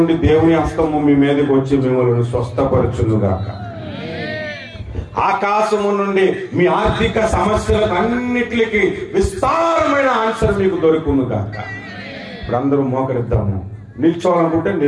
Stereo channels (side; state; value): both; identical; correlation 1.00